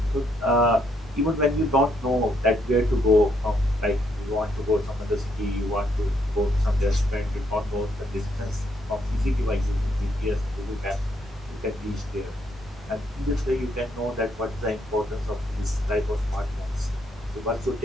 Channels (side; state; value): both; normal; correlation 0.74